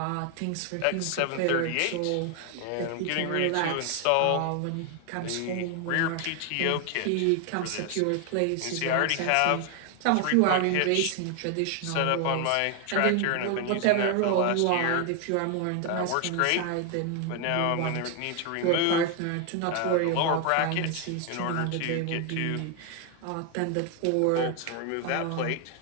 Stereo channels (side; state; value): both; different; correlation 0.01